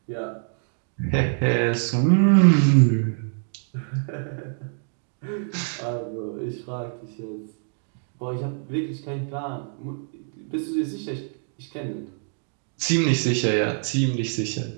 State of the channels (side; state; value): left; silent; 62 dB below the other